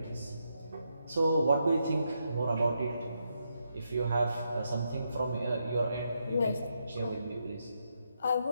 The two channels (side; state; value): both; inverted; correlation -0.81